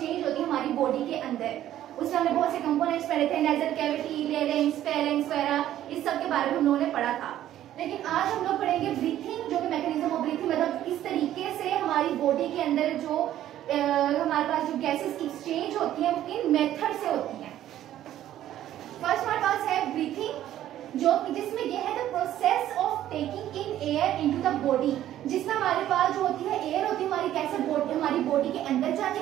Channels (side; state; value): left; quieter; 12.4 dB